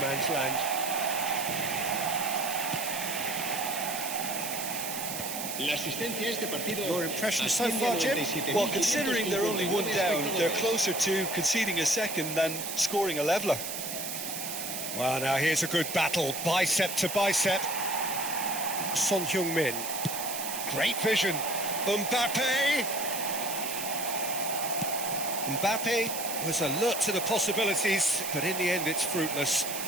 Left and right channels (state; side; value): noise; right; hiss, 5 dB below the sound